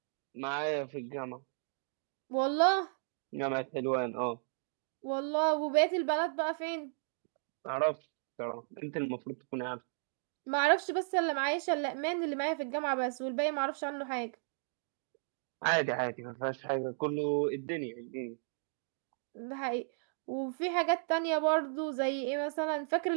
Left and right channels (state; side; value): silent; left; digital silence